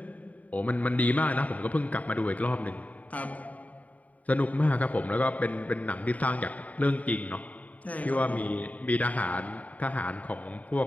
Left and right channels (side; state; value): right; late; 0.071 ms